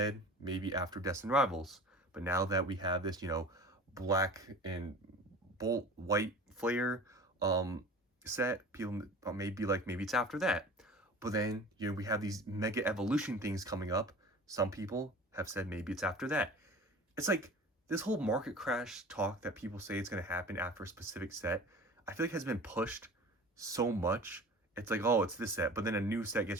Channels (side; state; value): both; normal; correlation 0.40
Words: maybe after Destined Rivals, but now that we have this, black and bolt white flare set, people may be like maybe it's after that. But then we have these mega evolution things coming up. Some people have said maybe it's after that. It's like this whole market crash talk that people say it's going to happen after a specific set. I feel like has been pushed so much. It's like, oh, it's this set, but then a new set